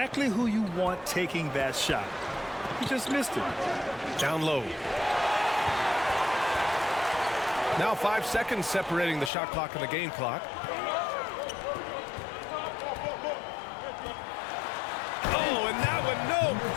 who you want taking that shot. He just missed it. Down low. Now 5 seconds separating the shot clock and the game clock. Oh, and that one, no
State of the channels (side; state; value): right; drops out; at 9.3 s